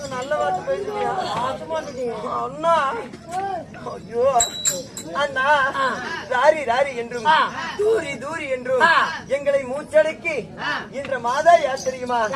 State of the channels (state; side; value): identical; both; correlation 1.00